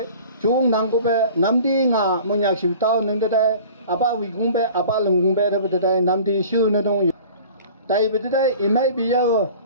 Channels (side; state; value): both; inverted; correlation -0.44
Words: chung năng có bé nam đi ngà Monyakshu tao nâng đây ba vị cũng bé ba lưng cũng bé thật đây nam đi siêu nó đông tại vì đây imay bây giờ